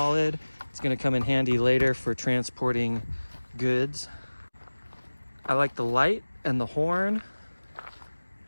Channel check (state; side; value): inverted; both; correlation -1.00